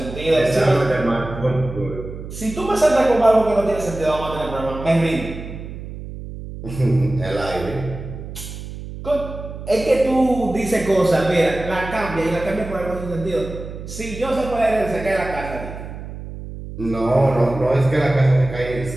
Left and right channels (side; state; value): right; noise; hum, 11 dB below the sound